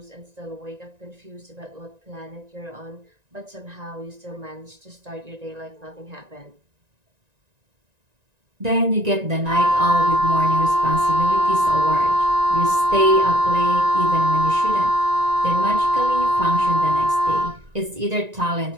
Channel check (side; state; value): left; late; 1.9 ms